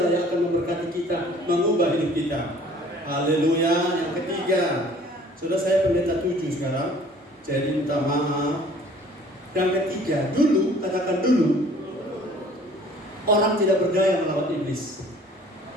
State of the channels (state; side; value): normal; both; correlation 0.52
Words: yang akan memberkati kita, mengubah hidup kita. Haleluya. Yang ketiga, sudah saya pendeta 7 sekarang, jadi minta maaf. Yang ketiga, dulu, katakan dulu, orang tidak berdaya melawan iblis.